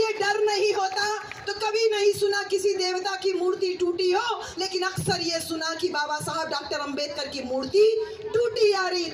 डर नहीं होता तो कभी नहीं सुना किसी देवता की मूर्ति टूटी हो, लेकिन अक्सर ये सुना कि बाबा साहब डॉक्टर अंबेडकर की मूर्ति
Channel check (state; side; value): identical; both; correlation 1.00